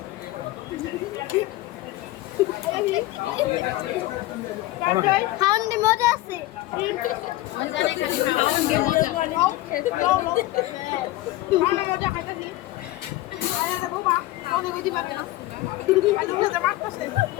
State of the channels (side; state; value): right; quieter; 17.6 dB